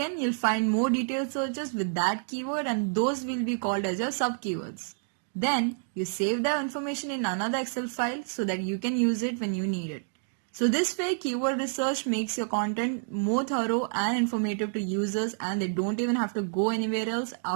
you'll find more detailed searches with that keyword and those will be called as your sub-keywords. Then, you save the information in another Excel file so that you can use it when you need it. So this way, keyword research makes your content more thorough and informative to users and they don't even have to go anywhere else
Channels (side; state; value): left; silent; digital silence